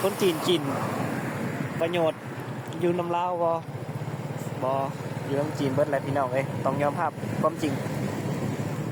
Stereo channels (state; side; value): identical; both; correlation 1.00